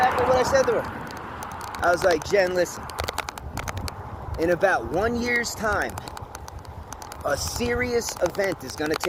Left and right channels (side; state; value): both; identical; correlation 1.00